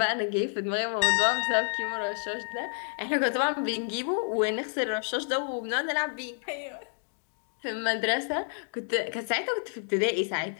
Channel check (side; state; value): right; silent; digital silence